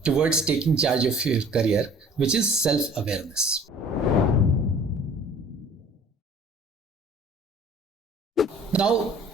towards taking charge of your career, which is self-awareness. Now,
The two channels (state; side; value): normal; both; correlation 0.49